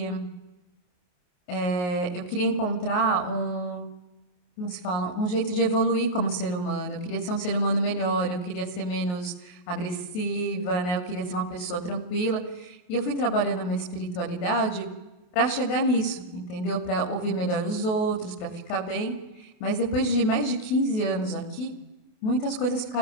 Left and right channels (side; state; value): right; late; 28 ms